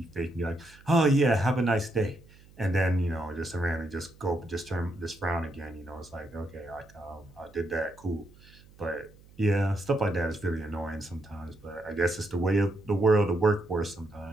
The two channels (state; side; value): noise; right; hum, 24 dB below the sound